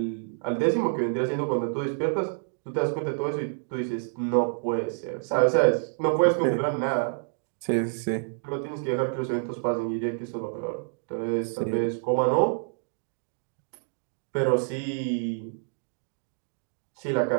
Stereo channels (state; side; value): silent; left; digital silence